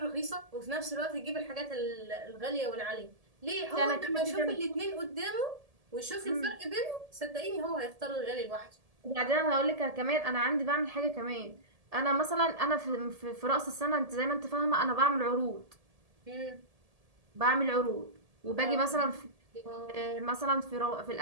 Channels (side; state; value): left; late; 1.7 ms